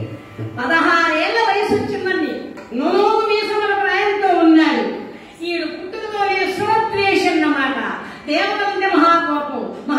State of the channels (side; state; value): both; identical; correlation 1.00